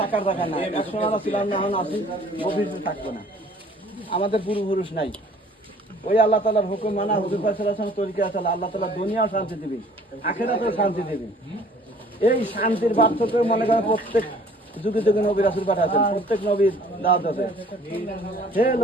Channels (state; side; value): normal; both; correlation 0.54